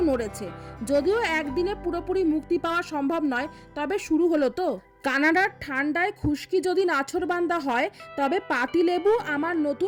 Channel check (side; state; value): both; identical; correlation 1.00